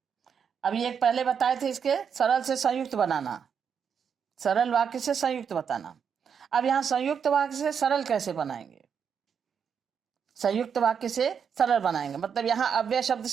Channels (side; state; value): left; quieter; 7.1 dB